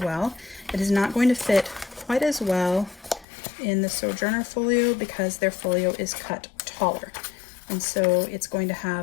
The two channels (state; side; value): drops out; right; at 3.2 s